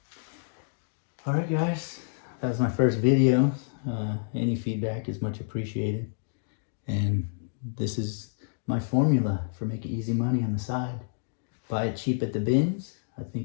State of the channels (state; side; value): silent; right; digital silence